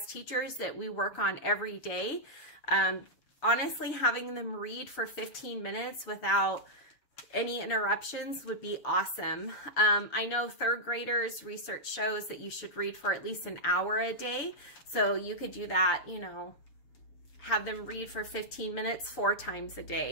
teachers that we work on every day. Honestly, having them read for 15 minutes without any interruptions would be awesome. I know 3rd graders, research shows that you should read for at least an hour a day. So you could do that, you know, have them read for 15 minutes 4 times a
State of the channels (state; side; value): late; right; 7.0 ms